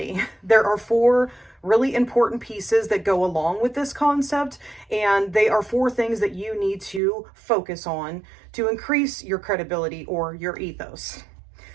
There are four really important pieces that go along with this concept, and they are four things that you need to focus on to increase your credibility or your ethos.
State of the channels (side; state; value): left; drops out; at 7.0 s